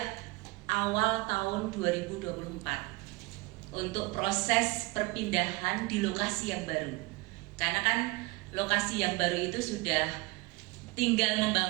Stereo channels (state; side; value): quieter; left; 23.7 dB